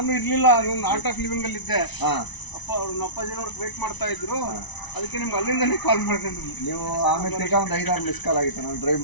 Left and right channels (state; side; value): late; right; 1.0 ms